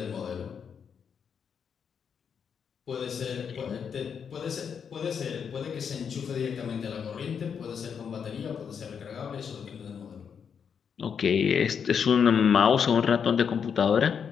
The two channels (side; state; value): right; quieter; 7.0 dB